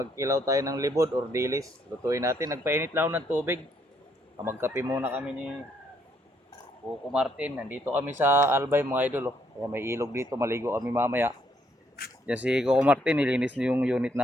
tayo ng libod or dilis. Lutuin natin, nagpainit lang ng tubig. Magkape muna kami ni Coco Martin. Nandito kami sa Albay mga idol oh. Kaya may ilog dito, maligo kami mamaya. Yan si Coco Martin, nilinis niyo yung unit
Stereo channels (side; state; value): both; normal; correlation 0.71